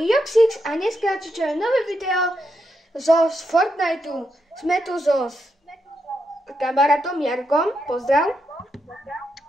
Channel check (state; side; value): normal; both; correlation 0.82